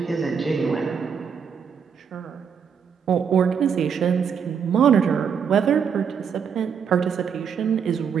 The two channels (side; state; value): left; quieter; 6.9 dB